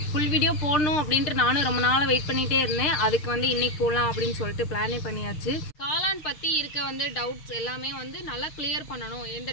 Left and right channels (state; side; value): late; right; 6.5 ms